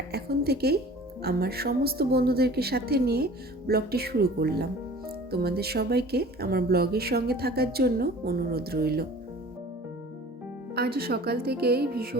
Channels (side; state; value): both; normal; correlation 0.45